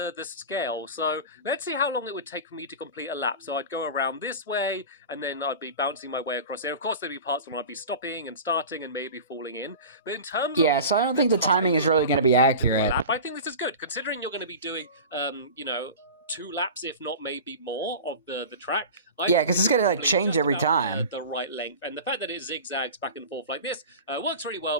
scale. So let's see how long it would take for me to complete a lap. So I'd go around this way, and then I'd be bouncing my way across there. Of course, there'd be parts when I'd be stopping and starting and maybe falling in. But in terms of... so I don't think the timing is really going to be accurate. I think this is good, considering you're going to be doing, you know, 2 laps, if not maybe more, of the track. Yeah, because it's going to like change every time. The right length, and the fact that it zigzags back and forth like this works really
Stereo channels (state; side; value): inverted; both; correlation -0.33